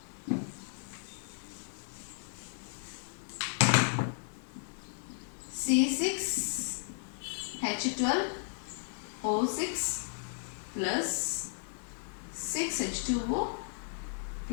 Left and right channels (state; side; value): silent; right; 55 dB below the other